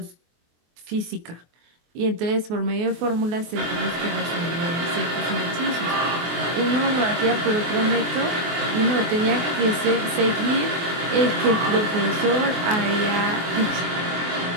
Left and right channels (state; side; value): late; left; 24 ms